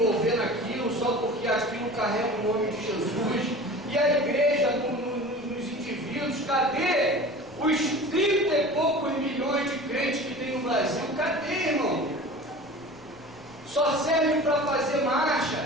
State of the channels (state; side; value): noise; left; rumble, 25 dB below the sound